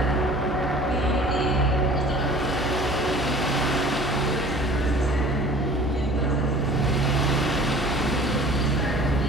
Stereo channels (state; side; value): normal; both; correlation 0.47